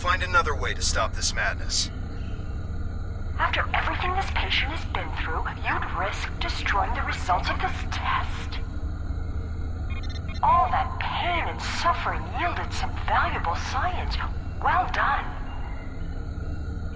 another way to stop this madness. After everything this patient has been through, you'd risk destroying the results of this test. All that pain and suffering yielded some valuable science. Well done.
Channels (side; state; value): both; identical; correlation 1.00